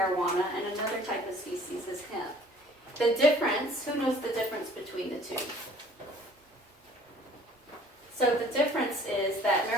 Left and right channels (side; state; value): both; normal; correlation 0.53